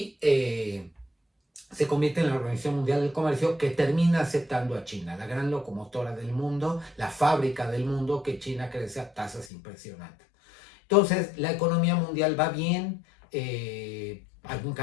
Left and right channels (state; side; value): drops out; right; at 9.5 s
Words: se convierte en la Organización Mundial del Comercio, que termina aceptando a China, la gran locomotora del mundo, la fábrica del mundo, que China crece a tasas impresionantes. Entonces, la economía mundial va bien, hay un